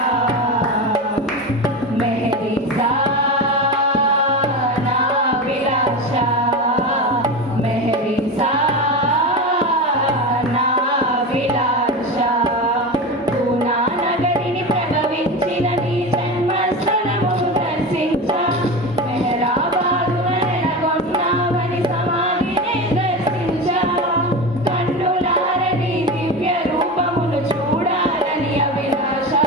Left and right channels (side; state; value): both; normal; correlation 0.23